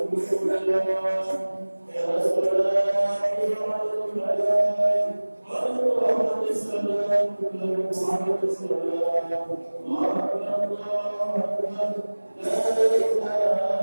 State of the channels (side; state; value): both; inverted; correlation -1.00